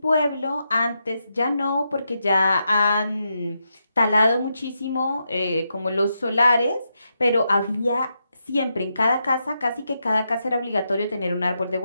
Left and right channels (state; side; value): inverted; both; correlation -0.84